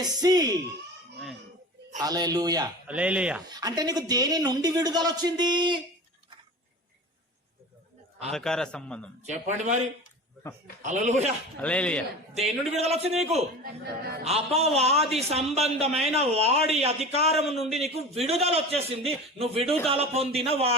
హల్లెలూయా. హల్లెలూయా. అంటే నీకు దేని నుండి విడుదల వచ్చింది? అంధకార సంబంధం. చెప్పండి మరి. హల్లెలూయా. హల్లెలూయా. దేని నుండి విడుదల వచ్చింది నీకు? అపవాది సంబంధమైన వాడి అధికారం నుండి నీకు విడుదల వచ్చేసింది. నువ్వు విడుదల పొందిన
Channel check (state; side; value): normal; both; correlation 0.34